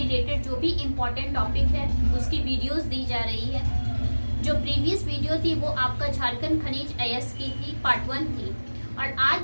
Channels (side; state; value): both; inverted; correlation -1.00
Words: जो भी इम्पोर्टेंट टॉपिक है उसकी वीडियोस दी जा रही है। जो प्रीवियस वीडियो थी वो आपका झारखंड खनिज अयस्क की थी, पार्ट 1 थी, और